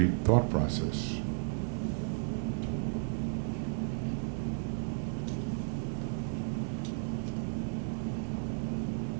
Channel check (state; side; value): silent; left; 55 dB below the other